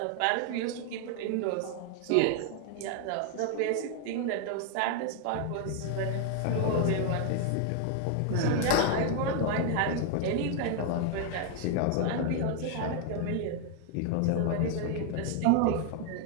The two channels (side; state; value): both; different; correlation 0.00